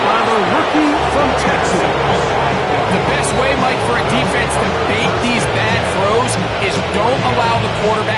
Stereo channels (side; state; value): both; identical; correlation 1.00